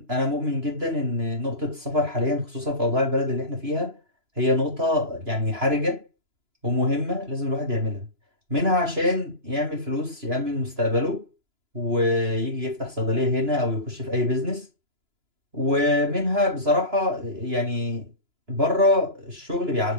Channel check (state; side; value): late; left; 2.9 ms